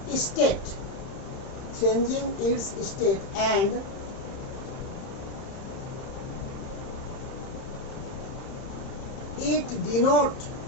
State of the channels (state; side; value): late; right; 31 ms